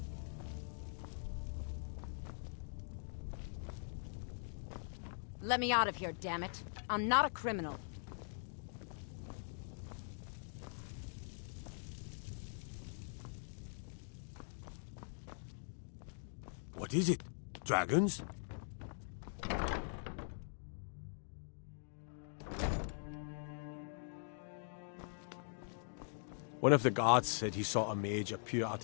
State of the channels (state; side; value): silent; right; digital silence